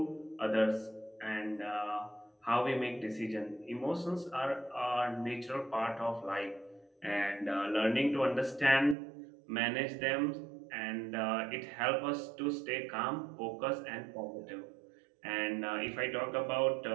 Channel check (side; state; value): left; drops out; at 9.0 s